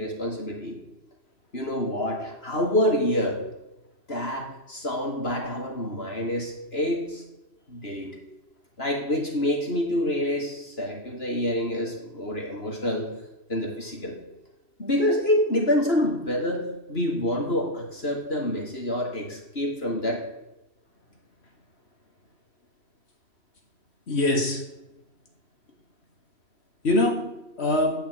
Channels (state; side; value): late; right; 2.9 ms